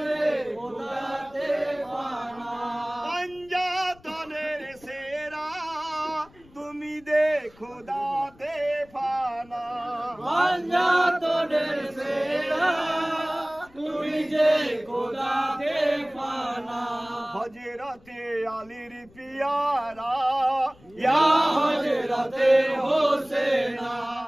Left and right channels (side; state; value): left; noise; rumble, 27 dB below the sound